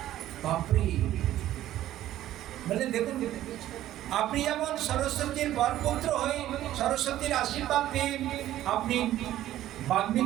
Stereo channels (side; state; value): left; quieter; 13.4 dB